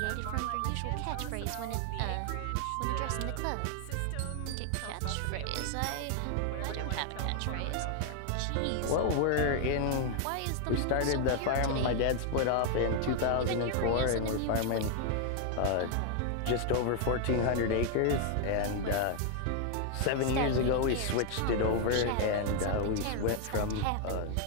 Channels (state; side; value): different; both; correlation 0.00